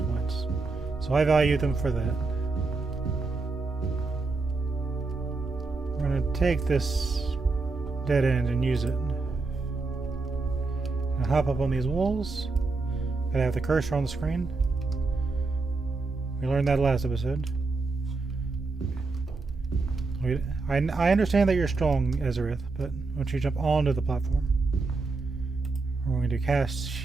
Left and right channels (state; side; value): quieter; left; 3.8 dB